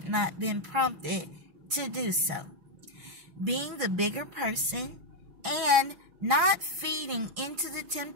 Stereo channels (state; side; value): late; left; 6.1 ms